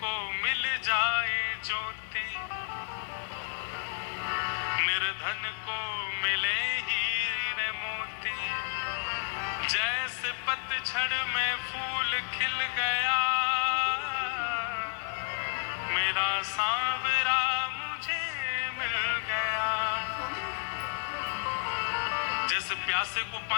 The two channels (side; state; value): right; silent; 57 dB below the other